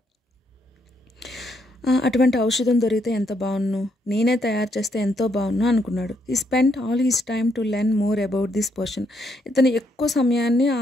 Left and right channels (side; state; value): both; normal; correlation 0.75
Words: అటువంటి ఔషధం దొరికితే ఎంత బాగున్ను, నేనే తయారు చేస్తే ఎంతో బాగున్ను అనుకున్నాడు. He spent all his time to learn more about this potion. ఇతను ఎక్కువ సమయాన్ని